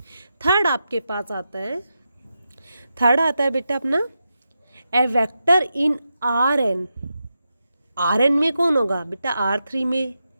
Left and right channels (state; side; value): inverted; both; correlation -0.88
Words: Third आपके पास आता है, third आता है बेटा अपना ए वेक्टर इन Rn। Rn में कौन होगा बेटा? R3 में